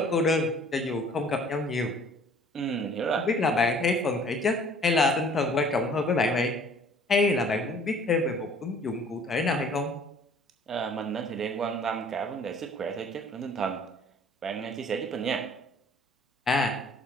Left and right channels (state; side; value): normal; both; correlation 0.53